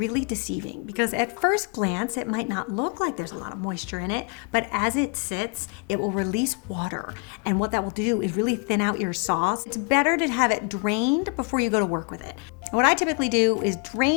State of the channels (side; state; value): right; quieter; 33.8 dB